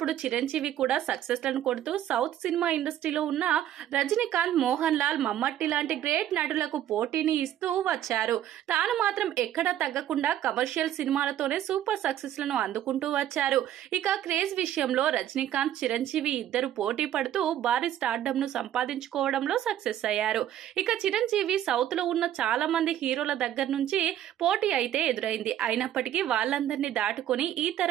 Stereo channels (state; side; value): quieter; left; 11.5 dB